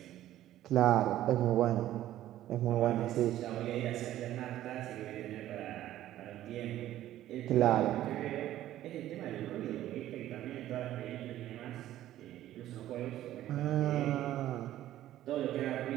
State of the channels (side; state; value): left; quieter; 13.4 dB